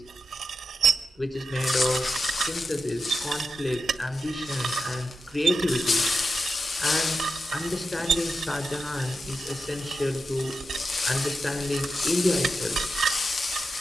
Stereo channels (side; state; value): both; normal; correlation 0.88